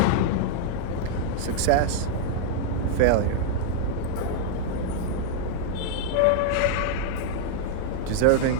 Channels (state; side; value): different; both; correlation -0.01